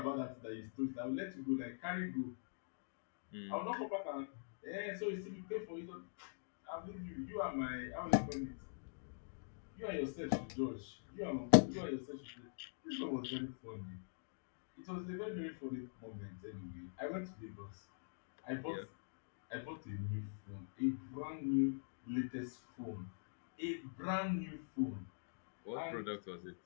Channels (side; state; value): right; silent; digital silence